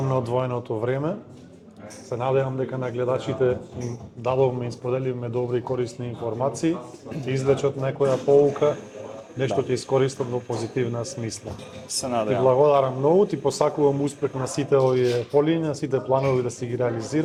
на одвоеното време. Се надевам дека на гледачите им дадовме и споделивме добри и корисни информации, ќе извлечат некоја поука, нешто ќе искористат во позитивна смисла. Се Ти надевам. благодарам многу, ти посакувам успех на сите овие полиња, сите планови да си ги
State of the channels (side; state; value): both; identical; correlation 1.00